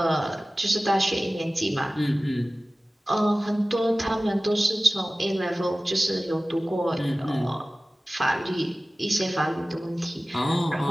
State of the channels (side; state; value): both; normal; correlation 0.97